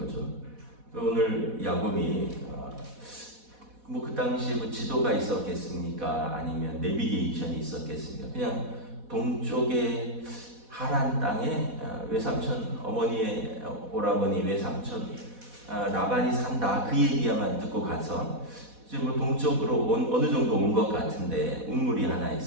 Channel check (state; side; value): late; left; 4.1 ms